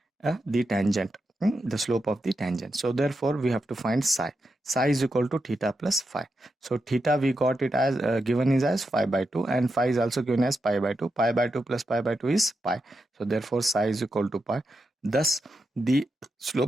tangent, the slope of the tangent. So therefore we have to find psi. Psi is equal to theta plus phi. So theta we got it as given is as phi by 2, and phi is also given as pi by 2. Pi by 2 plus pi by 2 is pi. So therefore psi is equal to pi. Thus the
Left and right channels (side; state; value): both; normal; correlation 0.87